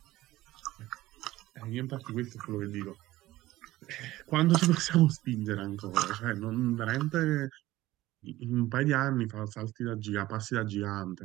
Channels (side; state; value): left; quieter; 16.8 dB